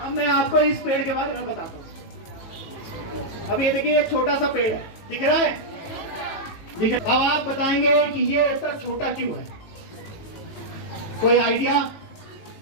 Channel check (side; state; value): right; late; 18 ms